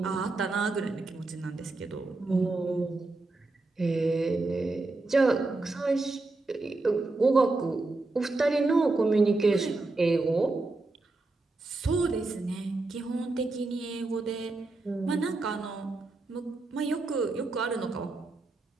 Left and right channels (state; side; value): quieter; left; 3.3 dB